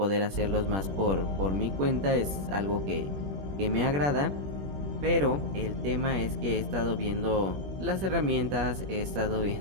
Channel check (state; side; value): late; left; 21 ms